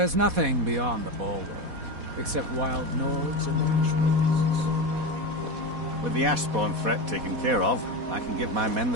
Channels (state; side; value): late; left; 4.1 ms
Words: nothing beyond the bulwark, except wild Nords and Ashwoods. With the Ashspawn threat taken care of, I can give my men